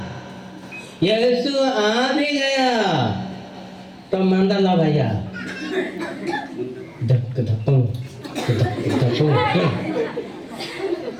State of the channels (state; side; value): identical; both; correlation 1.00